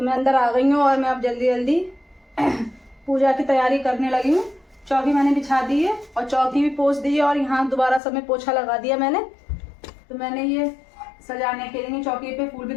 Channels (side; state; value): right; drops out; at 8.0 s